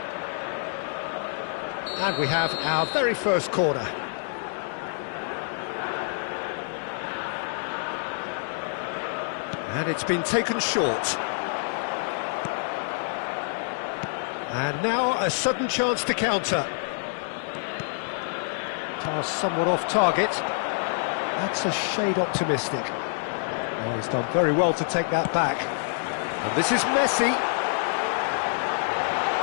And we have our very first corner. And it's been taken short. And now a sudden chance to counter. Pass somewhat off target. That's a shade optimistic. Oh, he's done very well to take that back. And this is Messi.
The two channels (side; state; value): right; silent; digital silence